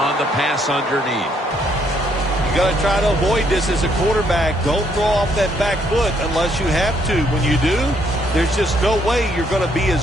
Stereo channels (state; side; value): normal; both; correlation 0.70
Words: the pass underneath. You got to try to avoid this as a quarterback. Don't throw off that back foot unless you have to. When you do, there's just no way you're going to be